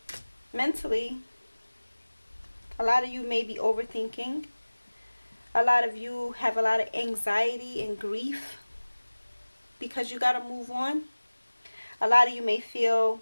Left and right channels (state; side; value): inverted; both; correlation -1.00